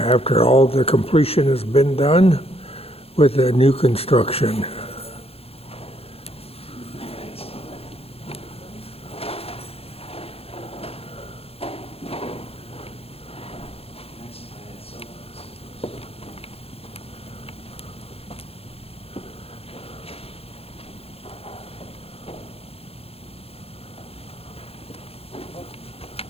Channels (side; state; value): right; late; 0.29 ms